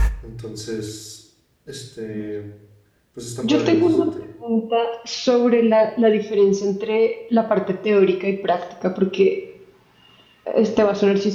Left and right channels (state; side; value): identical; both; correlation 1.00